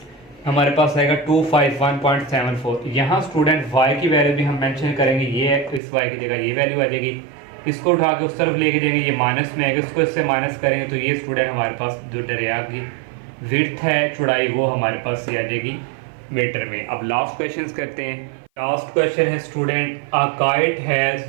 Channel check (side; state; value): left; drops out; at 5.8 s